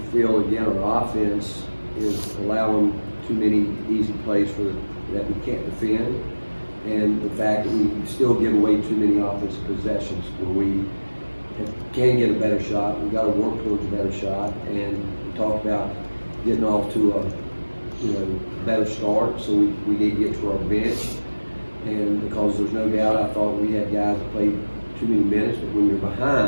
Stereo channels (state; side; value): inverted; both; correlation -1.00